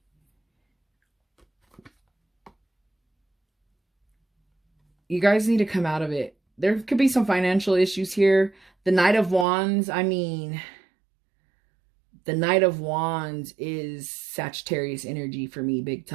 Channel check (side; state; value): left; drops out; at 9.5 s